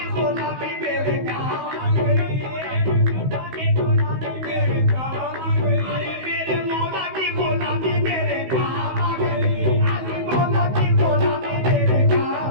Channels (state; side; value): late; left; 16 ms